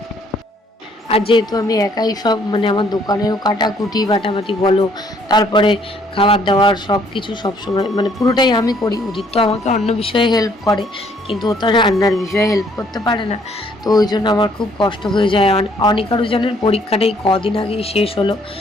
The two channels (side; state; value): both; normal; correlation 0.64